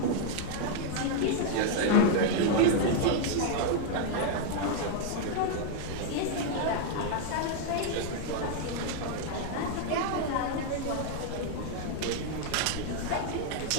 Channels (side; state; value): both; different; correlation 0.00